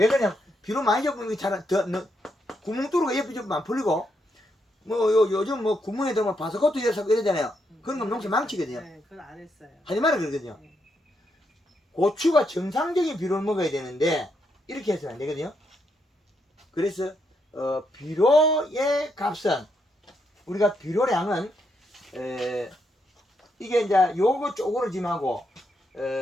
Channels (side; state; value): both; normal; correlation 0.79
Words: 그러냐? 비로 많이 접으면 구멍 뚫고 옆에 접으면 안 풀리고 요즘 구멍에 들어가면 바스코트 열사고 이러잖아요. 그런 건 농사 망치거든요. 네, 그건 안 했어요. 하지 마라 그러거든요. 네. 고추가 정상적인 비료를 먹어야 되는데 이렇게 해서는 안 되거든요. 그래서 비료의 값은 우리가 비료량은 이게 이제 요거 쪼그러짐하고